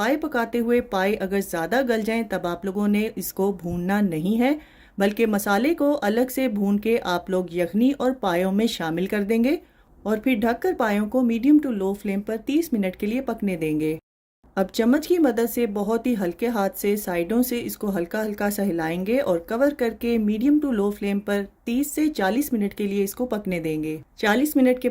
पकाते हुए पाए अगर ज़्यादा गल जाएं तब आप लोगों ने इसको भूनना नहीं है, बल्कि मसाले को अलग से भून के आप लोग यखनी और पायों में शामिल कर देंगे और फिर ढककर पायों को मीडियम टू लो फ्लेम पर 30 मिनट के लिए पकने देंगे। अब चम्मच की मदद से बहुत ही हल्के हाथ से साइडों से इसको हल्का हल्का सा हिलाएंगे और कवर करके मीडियम टू लो फ्लेम पर 30 से 40 मिनट के लिए इसको पकने देंगे। 40 मिनट के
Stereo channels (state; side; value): identical; both; correlation 1.00